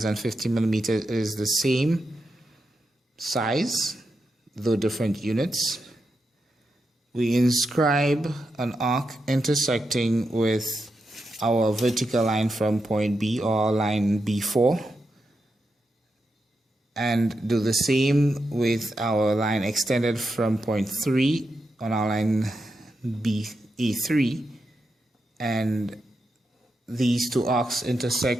and 50 millimeters is the same size, though different units. We inscribe an arc intersecting with our vertical line from point B, or line B4, and do the same with our line extended from point 3 on our line A3, and these two arcs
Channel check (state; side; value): normal; both; correlation 0.86